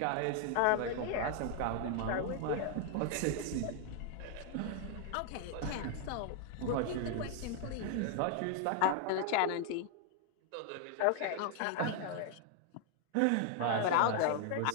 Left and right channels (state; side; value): different; both; correlation 0.00